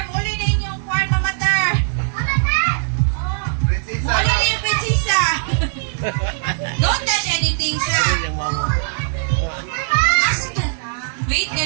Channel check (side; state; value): left; silent; digital silence